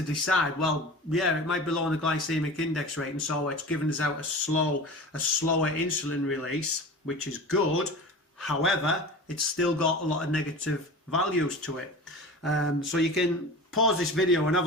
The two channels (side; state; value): both; normal; correlation 0.34